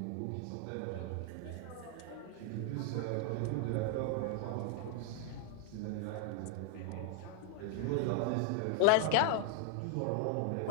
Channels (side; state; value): both; different; correlation 0.00